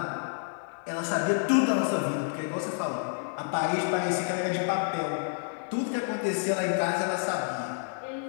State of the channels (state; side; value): silent; right; digital silence